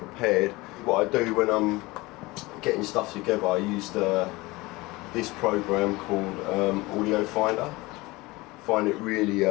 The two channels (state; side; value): quieter; right; 21.8 dB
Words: What I do when I'm getting stuff together, I used this program called Audio Finder. I find it